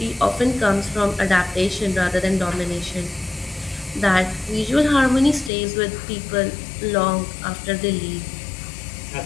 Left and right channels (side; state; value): right; drops out; at 5.5 s